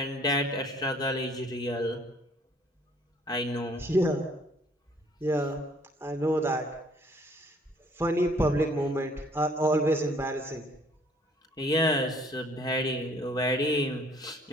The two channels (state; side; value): normal; both; correlation 0.59